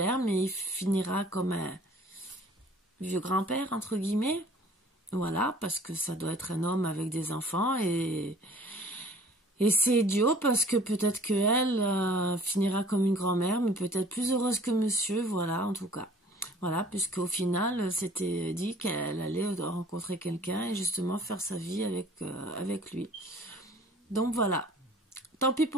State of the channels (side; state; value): both; normal; correlation 0.51